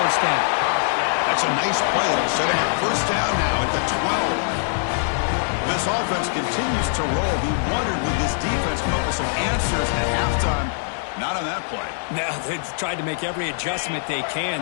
down. That's a nice play. It'll set him up first down now at the 12. This offense continues to roll. We wondered, would this defense come up with some answers at halftime? Not on that play. Now, they've tried to make every adjustment they can.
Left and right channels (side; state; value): right; silent; digital silence